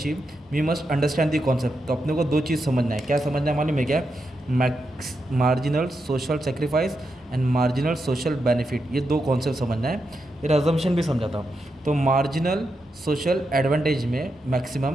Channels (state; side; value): normal; both; correlation 0.85